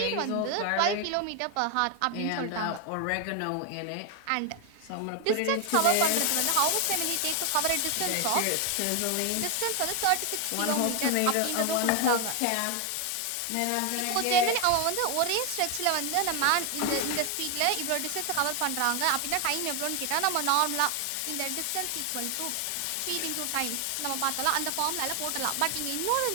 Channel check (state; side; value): different; both; correlation 0.01